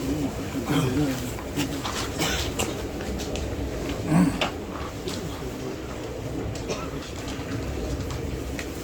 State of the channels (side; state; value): both; identical; correlation 1.00